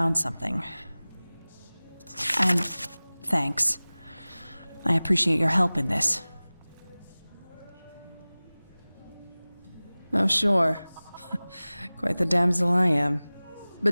something. And thanks. I appreciate your help in this. Oh, sure. Quite the damsel I am.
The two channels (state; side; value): inverted; both; correlation -0.99